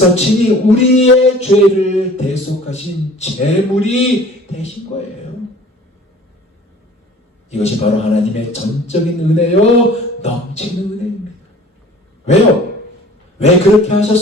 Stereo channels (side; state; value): both; normal; correlation 0.48